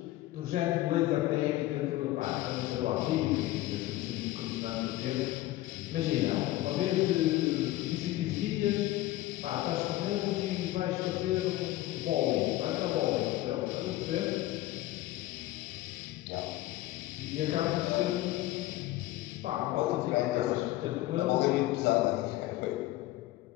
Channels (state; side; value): quieter; right; 16.4 dB